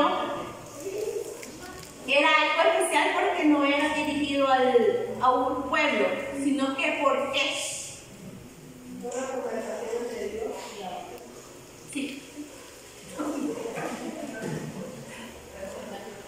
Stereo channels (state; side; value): identical; both; correlation 1.00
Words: era algo especial porque no era dirigido a un pueblo, sino que por qué. Sí.